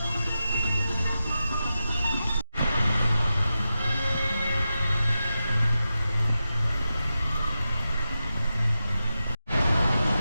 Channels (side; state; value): both; inverted; correlation -0.91